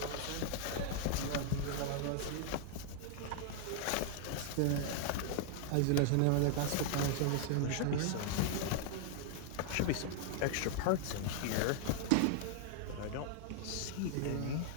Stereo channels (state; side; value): different; both; correlation 0.00